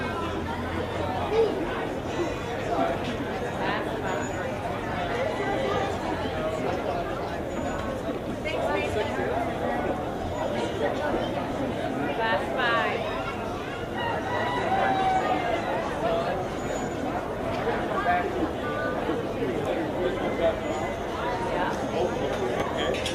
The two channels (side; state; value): both; identical; correlation 1.00